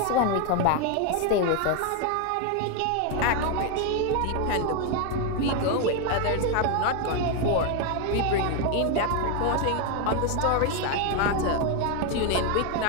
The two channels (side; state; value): both; different; correlation 0.01